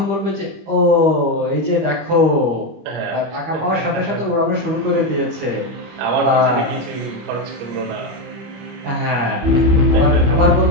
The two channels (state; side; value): late; left; 25 ms